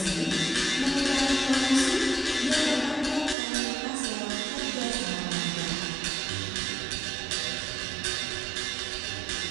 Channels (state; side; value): drops out; left; at 3.4 s